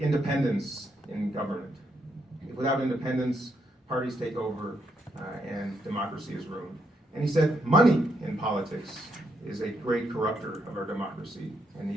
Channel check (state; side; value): normal; both; correlation 0.77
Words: in government. Without independence, parties take over and democracy is ruined. And he said money in politics is a great corrupter of our democracy and